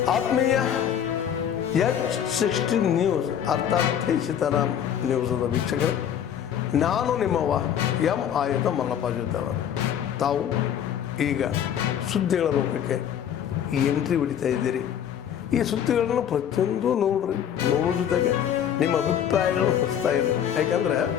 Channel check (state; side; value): quieter; right; 9.3 dB